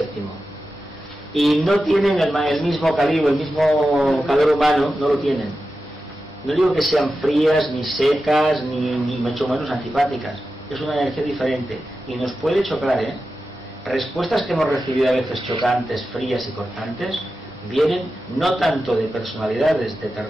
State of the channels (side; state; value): both; normal; correlation 0.92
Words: Y no tienen el mismo calibre, el mismo calor humano, no lo tienen. No digo que sean frías, ni secas, ni mucho menos antipáticas. Es una energía diferente. Y nos puede chocar, Respuestas que hemos recibido a veces chocantes, frías y cortantes, vienen no tanto de personalidades de